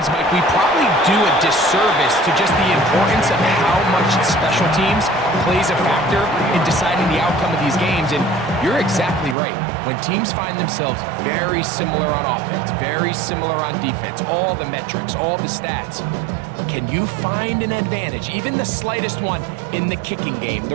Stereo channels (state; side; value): drops out; left; at 9.3 s